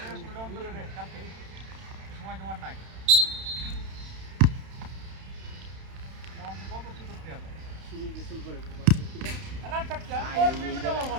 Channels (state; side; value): late; left; 31 ms